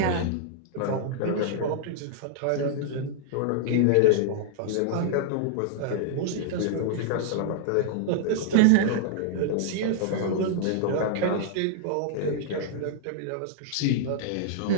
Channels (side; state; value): both; different; correlation -0.01